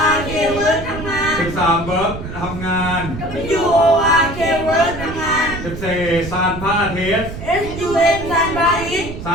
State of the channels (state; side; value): noise; right; rumble, 9 dB below the sound